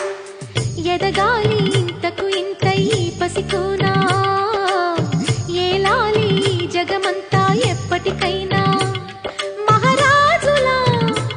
ఎదగాలి ఇంతకు ఇంత ఈ పసికోనా, ఏలాలి జగమంతా ఎప్పటికైనా, మహారాజులా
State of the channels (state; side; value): identical; both; correlation 1.00